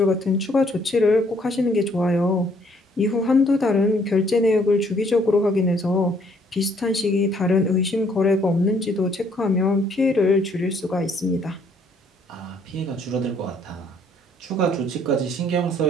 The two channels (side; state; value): both; normal; correlation 0.65